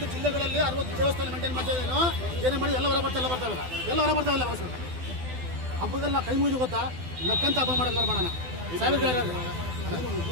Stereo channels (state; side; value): late; left; 12 ms